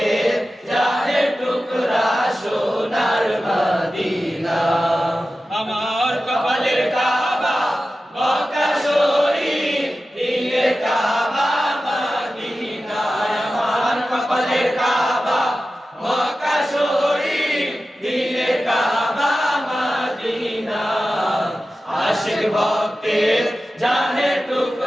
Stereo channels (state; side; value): normal; both; correlation 0.94